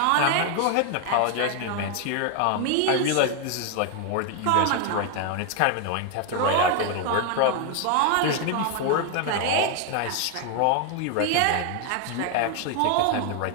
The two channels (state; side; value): different; both; correlation 0.01